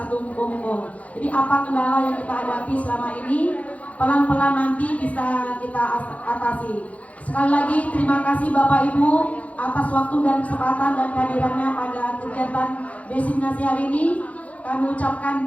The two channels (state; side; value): late; right; 0.067 ms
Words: Monggo-Monggo. Jadi apa kendala yang kita hadapi selama ini, pelan-pelan nanti bisa kita atasi. Sekali lagi terima kasih Bapak Ibu atas waktu dan kesempatan dan kehadirannya pada kegiatan diseminasi hari ini. Kami ucapkan